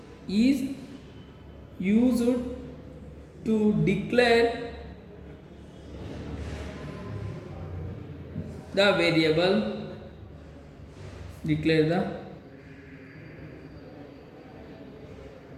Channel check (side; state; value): both; identical; correlation 1.00